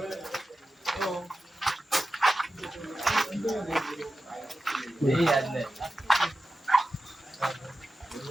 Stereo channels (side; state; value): both; normal; correlation 0.93